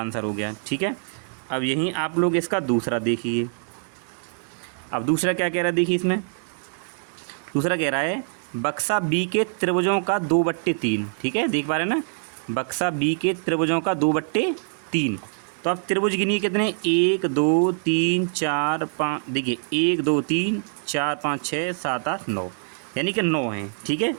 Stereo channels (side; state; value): left; silent; digital silence